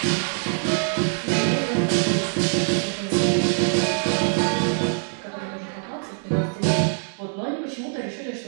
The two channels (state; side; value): silent; left; 63 dB below the other